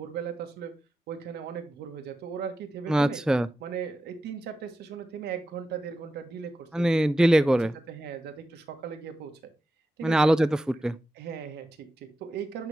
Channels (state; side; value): normal; both; correlation 0.90